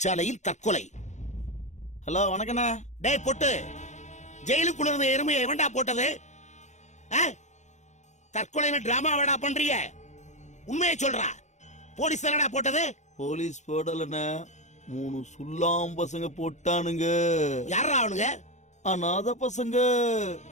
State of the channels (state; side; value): late; right; 0.34 ms